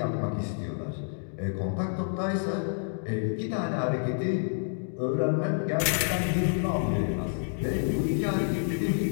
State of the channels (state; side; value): silent; right; digital silence